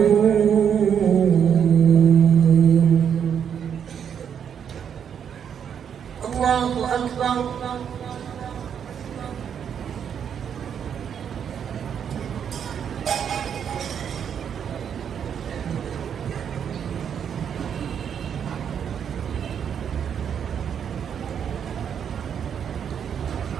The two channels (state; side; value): quieter; left; 8.1 dB